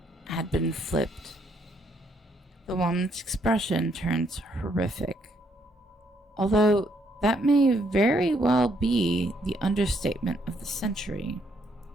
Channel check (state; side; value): normal; both; correlation 0.71